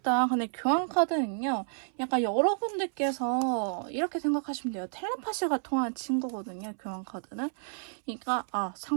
근데 교환 카드는요. 약간 여러분들께서 이렇게 생각하시면 돼요. 텔레파시가 통하는 친구거든요. 교환 카드는. 그러니까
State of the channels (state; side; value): silent; left; 58 dB below the other